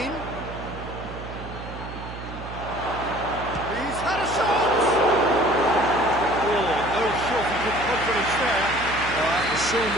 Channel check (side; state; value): right; noise; hum, 11 dB below the sound